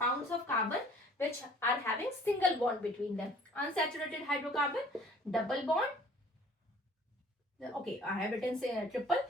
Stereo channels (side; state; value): both; normal; correlation 0.53